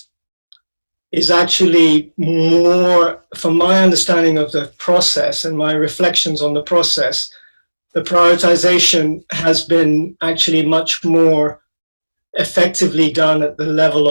is actually more, from my understanding of the process and my reflections on the process, the prioritization has been actually much more effectively done at the level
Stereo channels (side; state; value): both; inverted; correlation -1.00